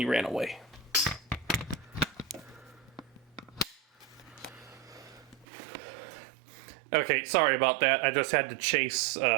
ran away. Okay, sorry about that. I just had to chase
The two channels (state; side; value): drops out; left; at 5.5 s